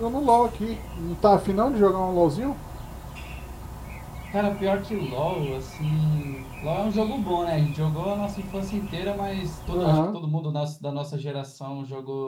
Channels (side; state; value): both; identical; correlation 1.00